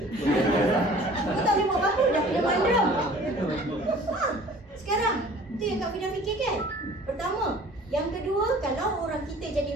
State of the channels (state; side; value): normal; both; correlation 0.48